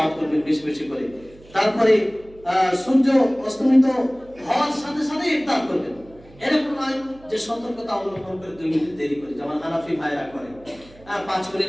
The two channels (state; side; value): noise; right; hum, 24 dB below the sound